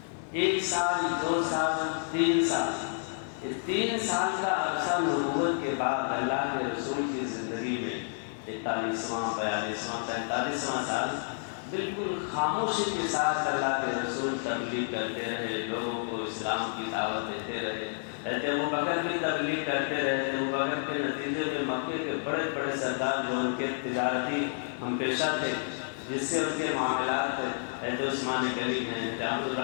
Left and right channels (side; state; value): right; silent; digital silence